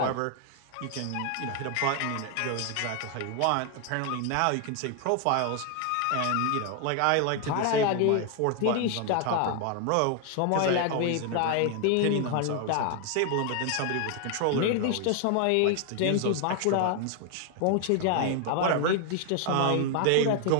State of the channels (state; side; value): different; both; correlation 0.00